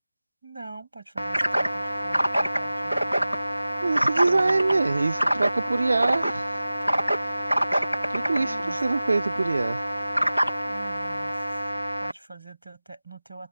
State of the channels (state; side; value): inverted; both; correlation -0.96